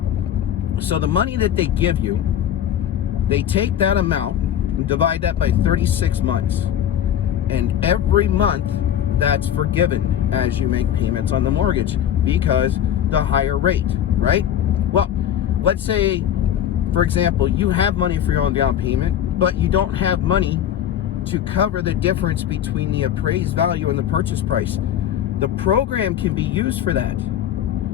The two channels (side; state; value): right; quieter; 10.2 dB